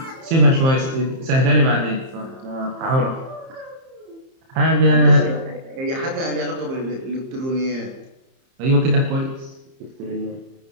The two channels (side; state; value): left; late; 30 ms